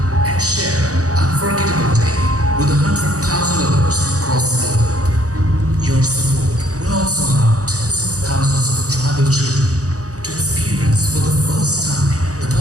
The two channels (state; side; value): late; left; 0.66 ms